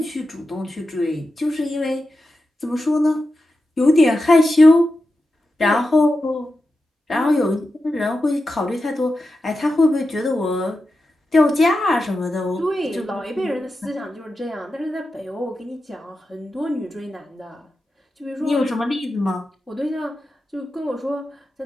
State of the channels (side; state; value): both; normal; correlation 0.90